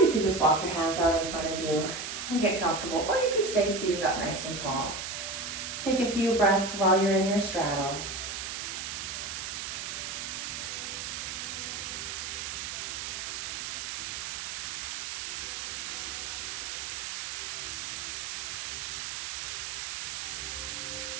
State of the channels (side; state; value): right; noise; hiss, 5 dB below the sound